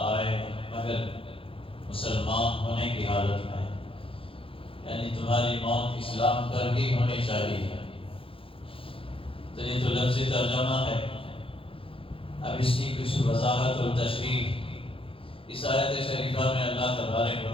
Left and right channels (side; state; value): right; late; 0.26 ms